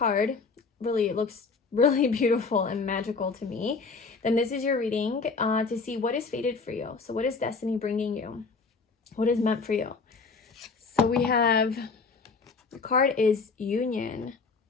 really, it looks really beautiful and magical to me, then this is your reading to see what is fated for you. So what is destiny bringing you? What is meant for you? So we have, the card is Union.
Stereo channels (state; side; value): quieter; right; 4.5 dB